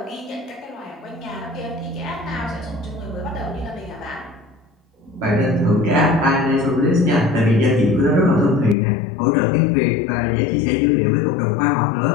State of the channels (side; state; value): right; drops out; at 8.8 s